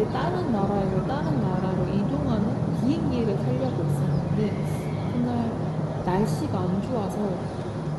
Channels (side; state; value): both; identical; correlation 1.00